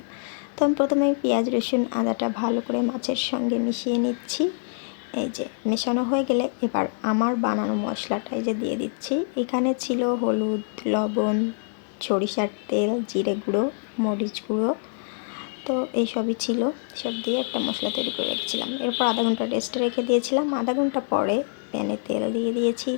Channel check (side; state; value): right; silent; 59 dB below the other